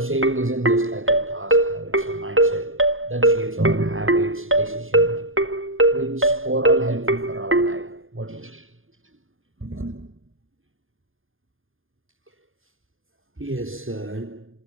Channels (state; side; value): late; left; 0.59 ms